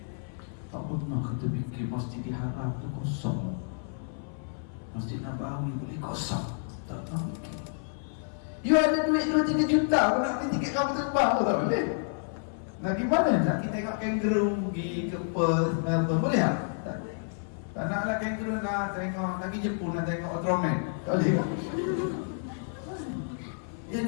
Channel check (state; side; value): silent; right; 56 dB below the other